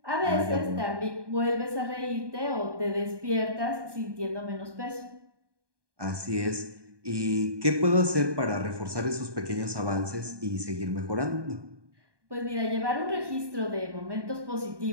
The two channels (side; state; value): left; late; 1.2 ms